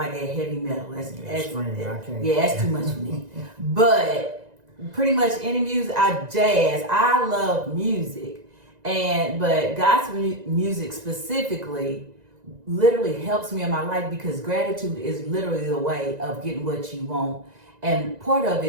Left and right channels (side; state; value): left; late; 1.9 ms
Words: heavy metal. That's too much for me. But pretty much any music, jazz. I love music, but gospel music specifically literally helps me in my life, because gratitude is literally the way of getting what you want, and part of